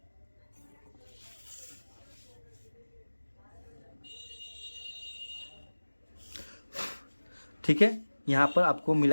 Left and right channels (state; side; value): inverted; both; correlation -1.00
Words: ठीक है, यहाँ पर आपको